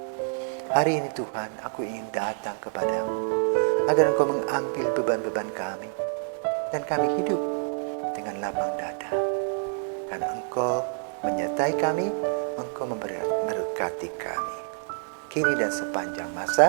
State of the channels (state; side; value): silent; left; 60 dB below the other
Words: Hari ini Tuhan, aku ingin datang kepadamu, agar Engkau mengambil beban-beban kami, dan kami hidup dengan lapang dada. Karena Engkau menyertai kami, Engkau memberkati kami, kini dan sepanjang